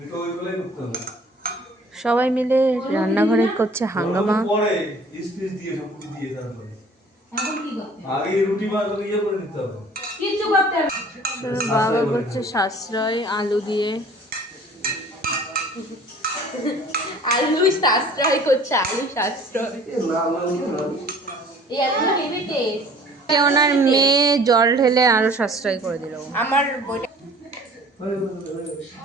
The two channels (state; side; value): normal; both; correlation 0.50